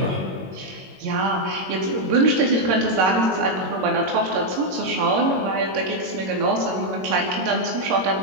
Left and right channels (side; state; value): left; late; 22 ms